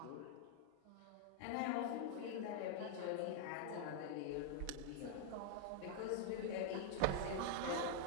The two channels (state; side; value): different; both; correlation 0.00